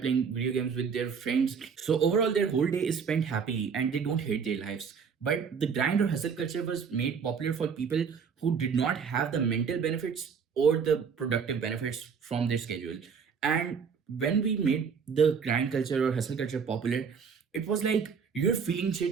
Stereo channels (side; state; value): left; quieter; 6.3 dB